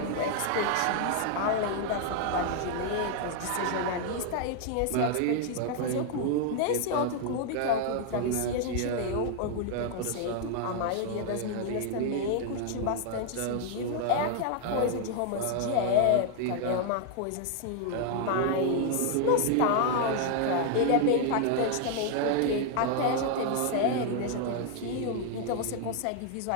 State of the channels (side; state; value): both; different; correlation 0.00